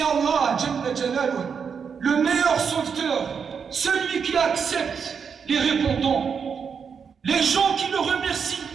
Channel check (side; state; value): left; quieter; 6.4 dB